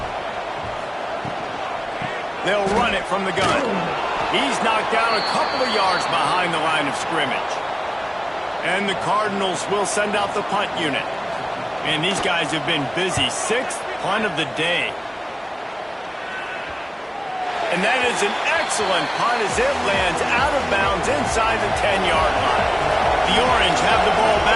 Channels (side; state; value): both; identical; correlation 1.00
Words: They'll run it from the gun. He's knocked down a couple of yards behind the line of scrimmage. And the Cardinals will send out the punt unit. And these guys have been busy. 6th punt of the day. And that is an excellent punt as it lands out of bounds inside the 10-yard line. The Orange have the ball